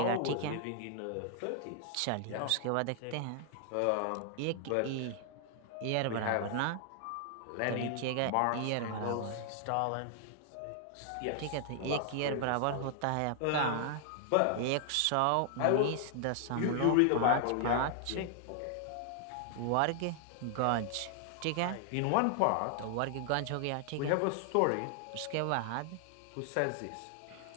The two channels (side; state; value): both; different; correlation 0.00